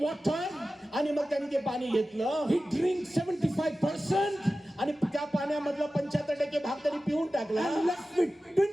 water. आणि मग त्यांनी ते पाणी घेतलं. He drinks 75% आणि त्या पाण्यामधला 75% भाग त्यांनी पिऊन टाकला and left with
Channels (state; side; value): normal; both; correlation 0.95